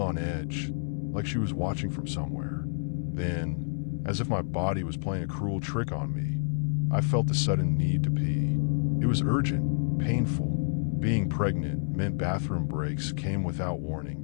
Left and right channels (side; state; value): right; silent; 59 dB below the other